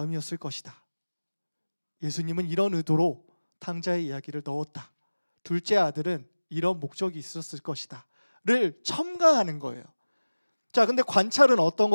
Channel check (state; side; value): inverted; both; correlation -1.00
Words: 것이다. 예수님은 이런 의도로 탕자의 이야기를 넣었다. 둘째 아들은 이런 목적이 있었을 것이다를 첨가하는 거예요. 자, 근데 관찰은 어떤